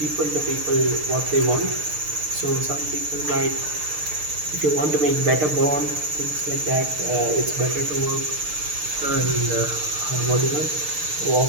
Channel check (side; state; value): left; late; 6.6 ms